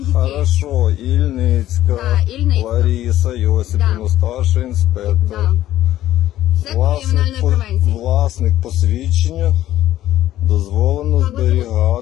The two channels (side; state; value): right; quieter; 13.5 dB